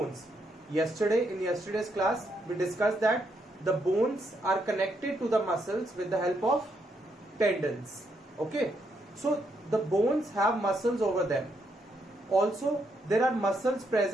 In yesterday's class we discussed that the bones are connected to the muscles with the help of tendons. Okay, so the bones have muscles over them. Also, there are muscles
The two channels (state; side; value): normal; both; correlation 0.77